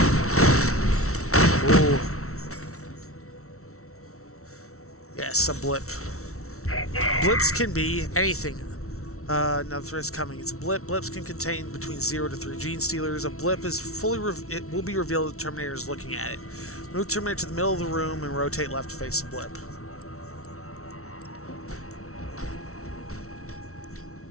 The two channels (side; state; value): right; late; 0.63 ms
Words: Ooh. Yes, a blip. Blips can be anything. Another threat is coming. It's a blip. Blips can contain between 0 to 3 Genestealers. A blip is it will be revealed if the Terminator is looking at it. Move Terminator to the middle of the room and rotate left to face the blip.